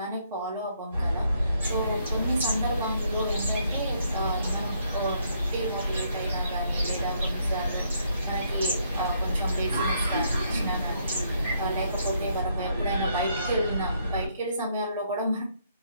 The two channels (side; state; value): both; inverted; correlation -0.72